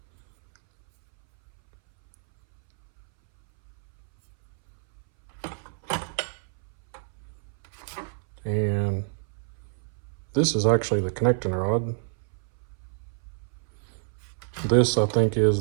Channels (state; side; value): silent; left; 60 dB below the other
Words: And this is actually the connecting rod. This, I think,